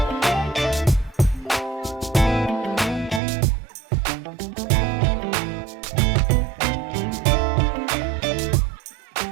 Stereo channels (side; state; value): left; drops out; at 3.2 s